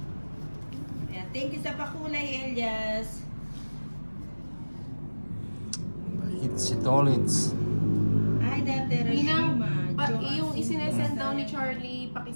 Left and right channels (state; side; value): inverted; both; correlation -1.00